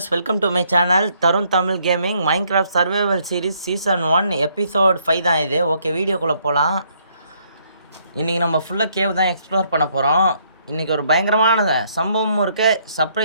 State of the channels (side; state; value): both; inverted; correlation -0.69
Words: welcome to my channel Tarun Tamil Gaming Minecraft Survival Series Season 1 Episode 5 தான் இது. Okay, வீடியோக்குள்ளே போகலாம். இன்றைக்கி நம்ம ஃபுல்லாக கேவ் தான் எக்ஸ்ப்ளோர் பண்ண போகிறோம். இன்றைக்கி ஒரு பயங்கரமான சம்பவமும் இருக்குது,